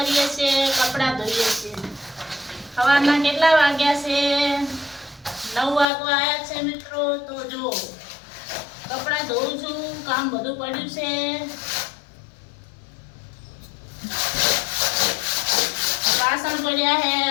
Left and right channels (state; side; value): drops out; right; at 5.9 s